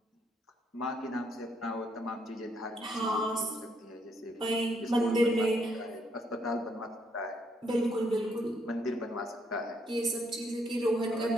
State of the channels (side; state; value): both; normal; correlation 0.72